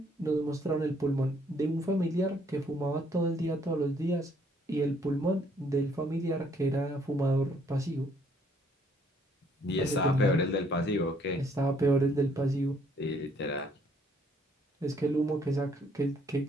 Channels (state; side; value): normal; both; correlation 0.65